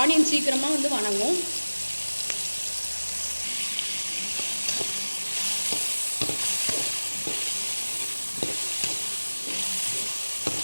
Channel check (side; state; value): both; inverted; correlation -1.00